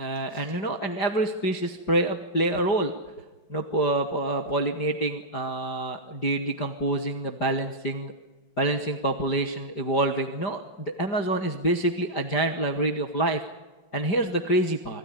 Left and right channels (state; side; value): late; right; 5.0 ms